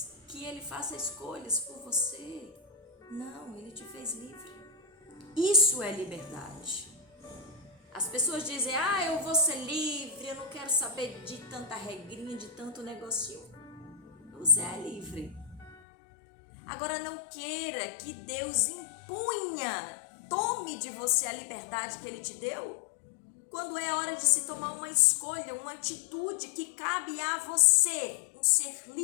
que Ele faça escolhas por você. Não, Ele te fez livre. Isso é liberdade. As pessoas dizem, eu vou ser livre, eu não quero saber de tanta regrinha, de tanto negocinho. Você é livre. Agora não queira que Deus tome de você a liberdade que Ele te deu, quando é hora de se tomar uma escolha, uma atitude que cabe a você, um ser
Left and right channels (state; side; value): drops out; right; at 15.8 s